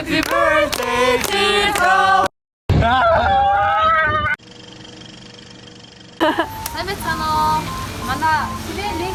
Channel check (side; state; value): both; identical; correlation 1.00